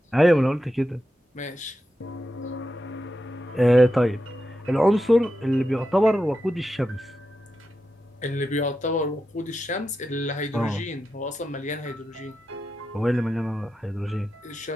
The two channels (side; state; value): both; normal; correlation 0.89